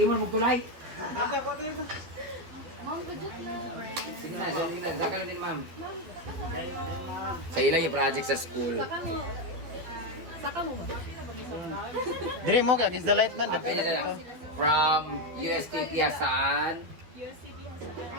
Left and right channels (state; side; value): late; left; 12 ms